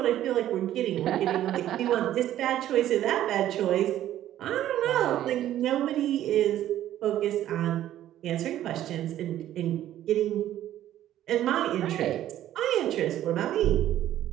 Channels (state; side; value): quieter; left; 12.5 dB